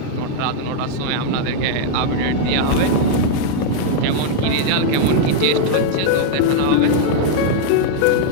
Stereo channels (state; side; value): different; both; correlation -0.01